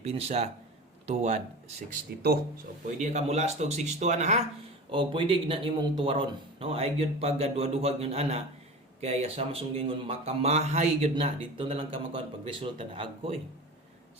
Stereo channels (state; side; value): normal; both; correlation 0.33